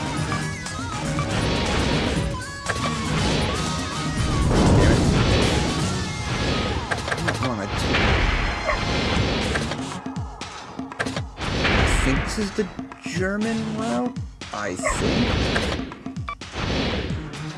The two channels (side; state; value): both; identical; correlation 1.00